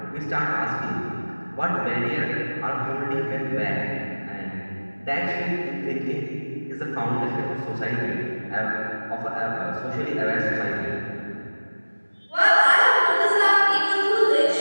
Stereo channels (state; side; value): inverted; both; correlation -1.00